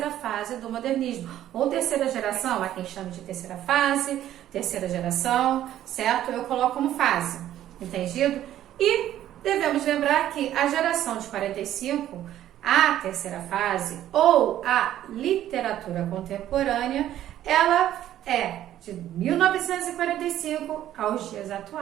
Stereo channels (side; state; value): left; quieter; 12.3 dB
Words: fase do modernismo, ou terceira geração, há quem chame de terceira fase, terceira geração, certo? Eu coloco como fase, entendido? E devemos lembrar que a geração de 45, a terceira fase, ou a literatura contemporânea, ela é de 1945 aos dias